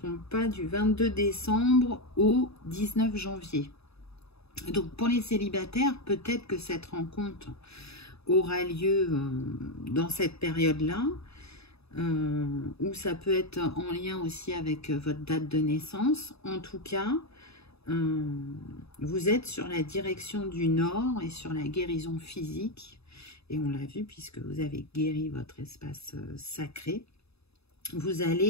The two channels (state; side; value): late; right; 0.79 ms